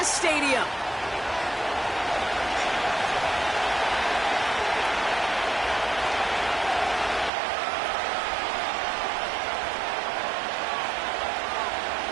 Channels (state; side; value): drops out; left; at 7.3 s